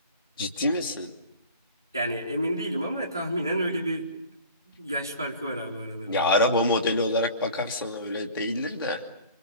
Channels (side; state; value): both; inverted; correlation -0.43